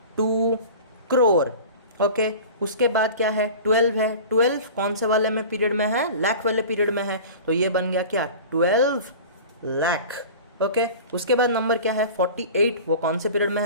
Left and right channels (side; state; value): both; inverted; correlation -0.37